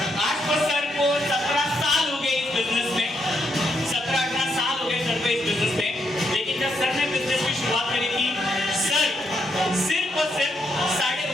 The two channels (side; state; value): both; normal; correlation 0.78